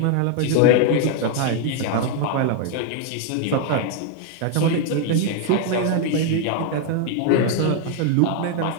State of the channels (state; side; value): different; both; correlation 0.00